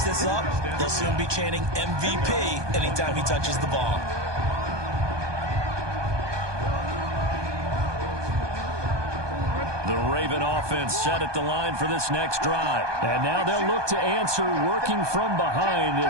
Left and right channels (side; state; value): left; late; 1.2 ms